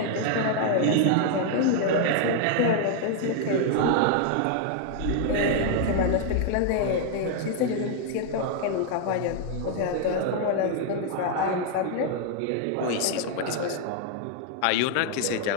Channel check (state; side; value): different; both; correlation 0.00